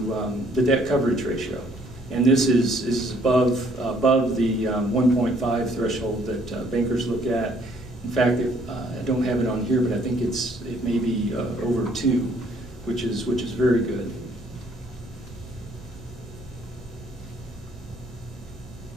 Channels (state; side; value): normal; both; correlation 0.63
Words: debt coverage ratio. And this is above the 1.5 threshold that bankers look at. In fact, I don't have it on here, but I think it may be over 2, which is very good.